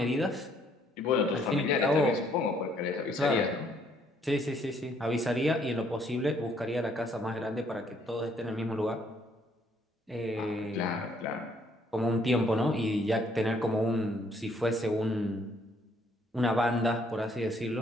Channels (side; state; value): both; normal; correlation 0.66